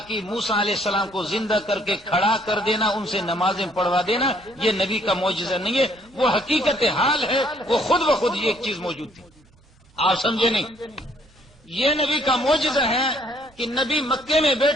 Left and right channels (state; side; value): normal; both; correlation 0.64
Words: موسیٰ علیہ السلام کو زندہ کر کے کھڑا کر دینا، ان سے نمازیں پڑھوا دینا، یہ نبی کا معجزہ نہیں ہے، وہ حقیقت حال ہے، وہ خود بخود یہ ایک چیز موجود تھی. آپ سمجھے نہیں؟ یہ نبی کا معجزہ ہے کہ نبی مکے میں